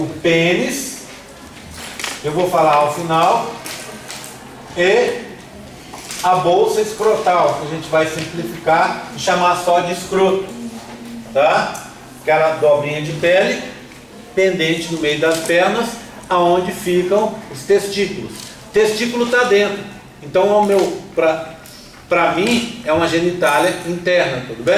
pênis, eu vou falar ao final, e a bolsa escrotal, que a gente vai simplificar e chamar só de escroto, tá? Aquela dobrinha de pele pendente no meio das pernas, aonde ficam os testículos. O testículo está dentro, então para mim é uma genitália interna, tudo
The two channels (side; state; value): both; identical; correlation 1.00